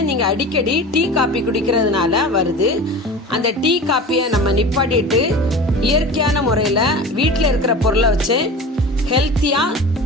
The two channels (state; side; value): normal; both; correlation 0.35